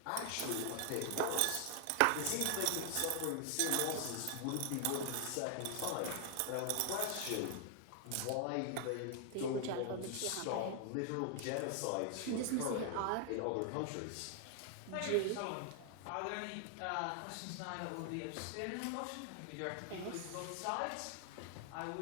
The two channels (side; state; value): both; different; correlation 0.00